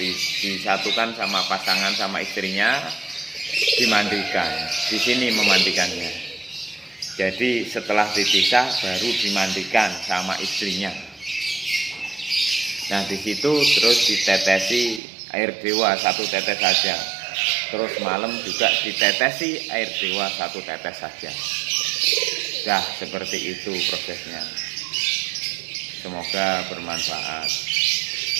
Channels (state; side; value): drops out; left; at 15.0 s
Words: sama pasangan sama istrinya, dimandikan. Di sini memandikannya. Jadi setelah dipisah baru dimandikan sama istrinya. Nah, di situ terus ditetesi air dewa 1 tetes saja. Terus malam juga ditetesi air dewa 1 tetes saja. Dah, seperti itu prosesnya. Semoga bermanfaat.